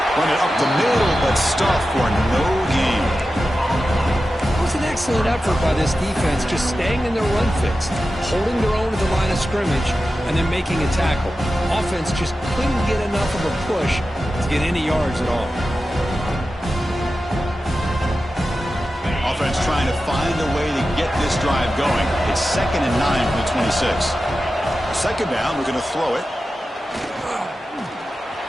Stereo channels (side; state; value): both; normal; correlation 0.93